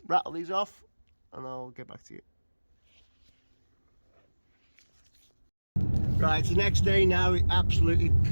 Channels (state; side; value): inverted; both; correlation -1.00